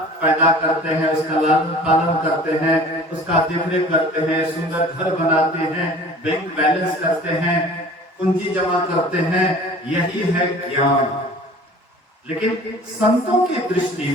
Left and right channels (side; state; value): both; normal; correlation 0.45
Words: पैदा करते हैं, उसका लालन पालन करते हैं, उसका देखरेख करते हैं, सुंदर घर बनाते हैं, बैंक बैलेंस करते हैं, पूंजी जमा करते हैं, यही है ज्ञान। लेकिन संतों की दृष्टि